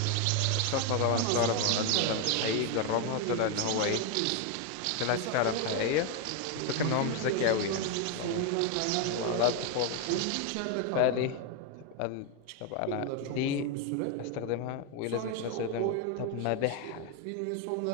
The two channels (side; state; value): both; different; correlation 0.01